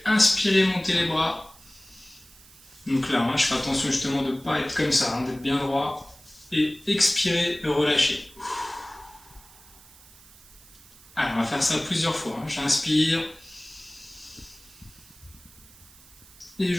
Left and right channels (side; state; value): right; noise; hiss, 24 dB below the sound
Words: inspirer, monter les bras. Donc là, je fais attention justement de ne pas être comme ça, d'être bien droit et expirer, relâcher. Alors, on va faire ça plusieurs fois. J'inspire et